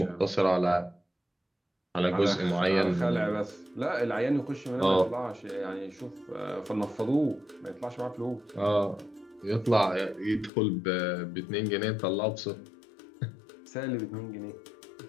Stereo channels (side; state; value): right; drops out; at 10.5 s